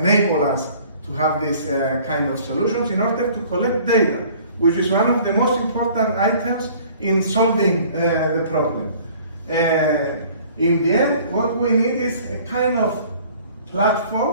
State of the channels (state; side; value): inverted; both; correlation -0.52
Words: us to have this kind of solutions in order to collect data, which is one of the most important items in solving the problem. In the end, what we need is a kind of